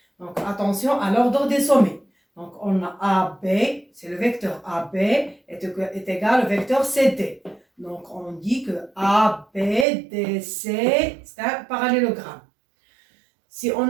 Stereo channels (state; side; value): drops out; left; at 9.9 s